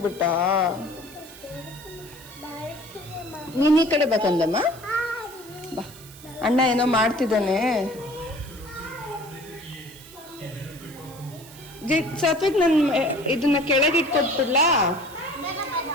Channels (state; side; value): noise; right; hiss, 20 dB below the sound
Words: ನೀನ್ ಈ ಕಡೆ ಬೇಕಂದಮ್ಮ, ಬಾ ಅಣ್ಣ ಏನೋ ಮಾಡ್ತಿದ್ದಾನೆ. ಸಾತ್ವಿಕ್ ನನ್ ಇದನ್ನ ಕೆಳಗೆ ಇಟ್ಕೊಟ್ಬಿಡ್ಲಾ?